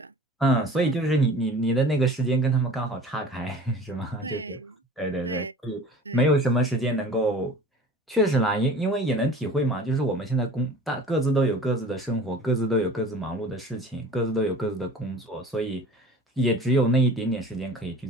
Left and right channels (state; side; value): normal; both; correlation 0.43